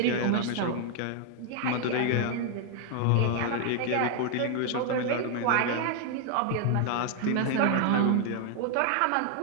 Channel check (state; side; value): different; both; correlation 0.00